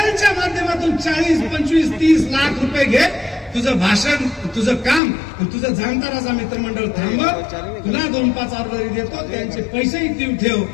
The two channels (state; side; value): drops out; right; at 5.0 s